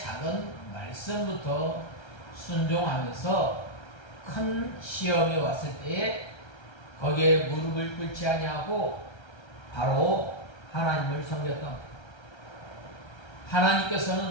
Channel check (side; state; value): right; late; 1.3 ms